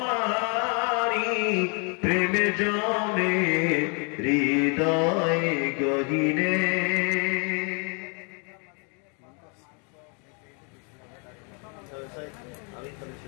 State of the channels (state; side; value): quieter; right; 36.4 dB